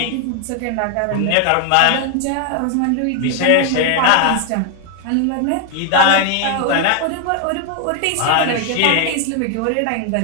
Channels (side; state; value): both; different; correlation 0.00